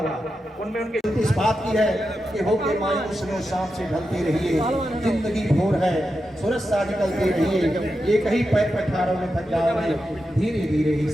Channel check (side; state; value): both; normal; correlation 0.89